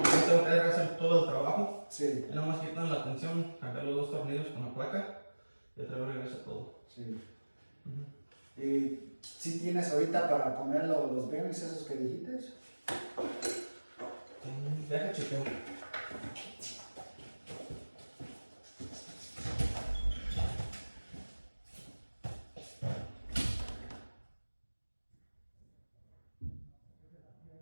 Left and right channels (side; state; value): both; inverted; correlation -1.00